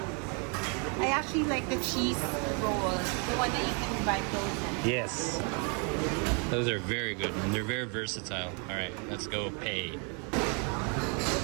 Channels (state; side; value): quieter; left; 35.8 dB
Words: I actually like the cheese rolls, the one that you can buy frozen. Yes. Those are very good and they're very versatile. All right, let's go pay.